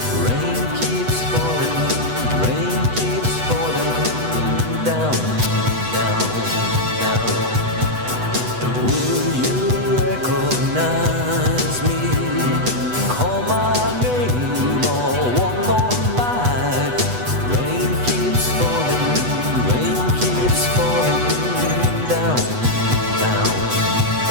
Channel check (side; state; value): left; late; 8.1 ms